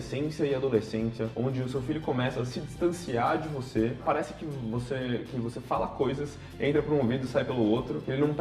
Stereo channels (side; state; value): both; identical; correlation 1.00